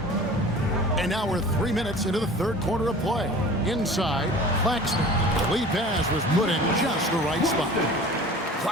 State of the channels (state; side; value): normal; both; correlation 0.42